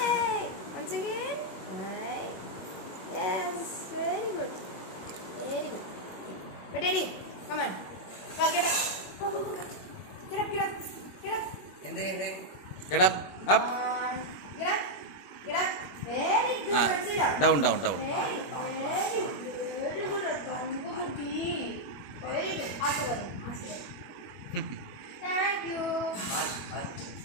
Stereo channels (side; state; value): right; late; 21 ms